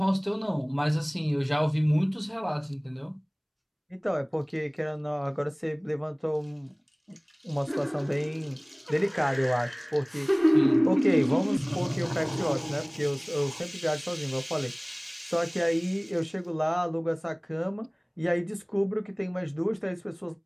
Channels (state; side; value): identical; both; correlation 1.00